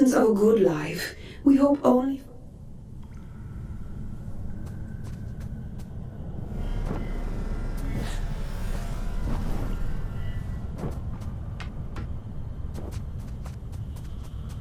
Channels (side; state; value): both; identical; correlation 1.00